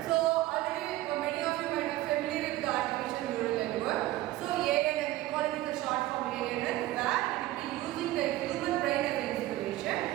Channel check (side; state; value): left; quieter; 16.2 dB